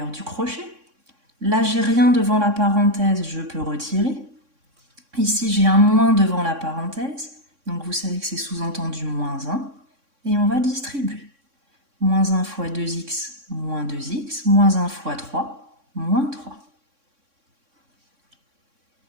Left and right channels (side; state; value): left; late; 3.6 ms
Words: du crochet. Là, j'ai rien devant la parenthèse, je peux retirer. Ici, j'ai un moins devant la parenthèse, donc vous savez que c'est sous-entendu moins 1. Et on va distribuer. Moins 1 fois 2x, moins 2x, moins 1 fois 3, moins 3.